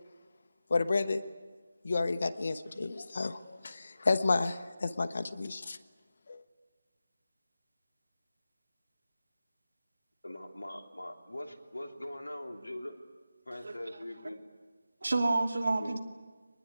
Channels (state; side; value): inverted; both; correlation -0.93